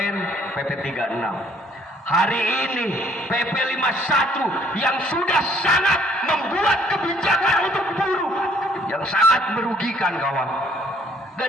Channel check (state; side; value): normal; both; correlation 0.62